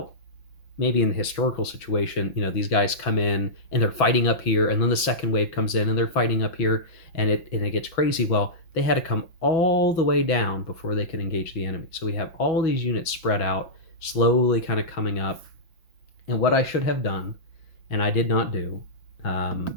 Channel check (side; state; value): right; late; 6.1 ms